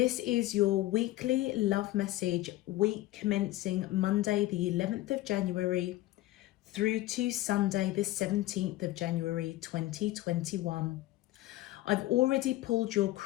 is your weekly love message, week commencing Monday, the 11th of January, through to Sunday, the 17th of January, 2021. I've already pulled your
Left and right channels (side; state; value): right; quieter; 16.7 dB